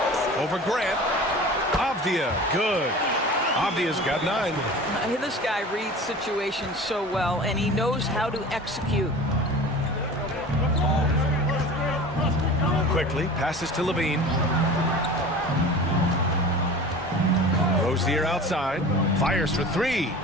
Over Grant. Avdia. Good. Avdia's got 9. This guy reads situations so well, and he knows how to execute. Quickly passes to Levine. Rozier outside. Fires for 3.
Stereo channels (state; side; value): normal; both; correlation 0.38